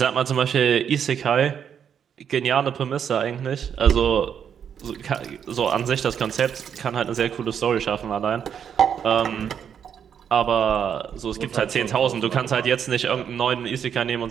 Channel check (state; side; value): quieter; left; 8.1 dB